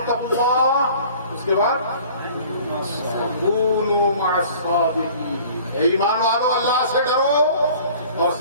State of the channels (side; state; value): both; inverted; correlation -0.48